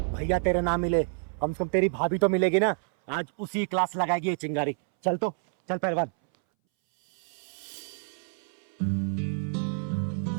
भैया तेरे ना मिले, कम से कम तेरी भाभी तो मिलेगी ना। आज उसी क्लास लगाएगी ये चिंगारी। चल तो, चल पहलवान।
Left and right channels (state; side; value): silent; left; 59 dB below the other